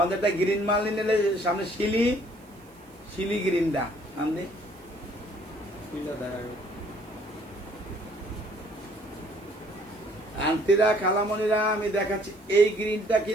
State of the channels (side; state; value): right; noise; hiss, 29 dB below the sound